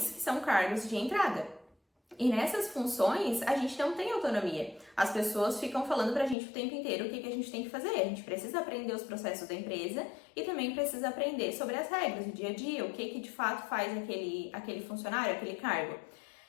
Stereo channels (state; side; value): drops out; right; at 6.4 s